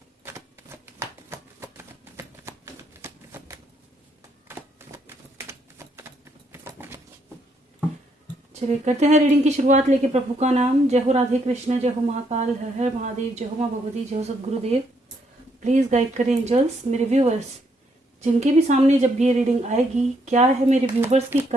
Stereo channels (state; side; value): normal; both; correlation 0.74